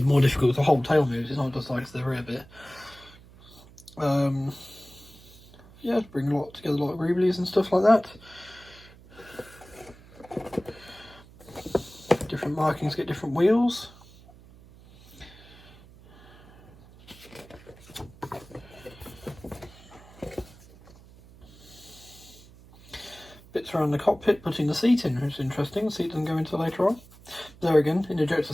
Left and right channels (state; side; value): noise; right; hum, 22 dB below the sound